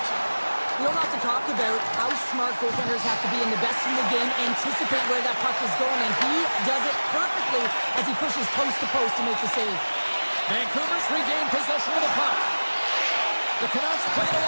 We don't have to talk about how smart goaltenders have to be, and the best in the game anticipate where that puck is going, and he does it perfectly as he pushes post to post to make the save. Vancouver's regained possession of the puck. The Canucks played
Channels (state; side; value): inverted; both; correlation -1.00